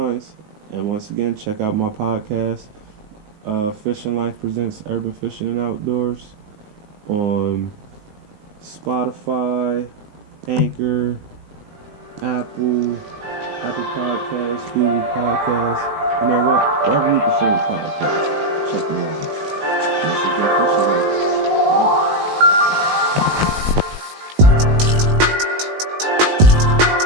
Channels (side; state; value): left; late; 19 ms